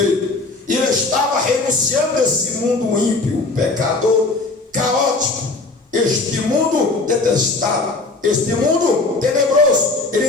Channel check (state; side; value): quieter; right; 3.5 dB